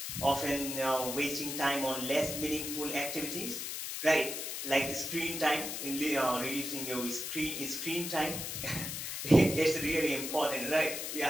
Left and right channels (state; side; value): noise; left; hiss, 5 dB below the sound